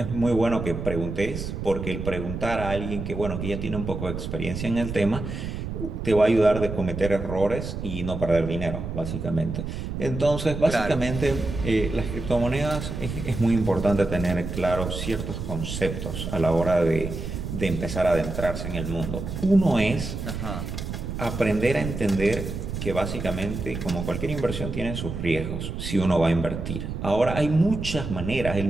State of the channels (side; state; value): right; noise; rumble, 6 dB below the sound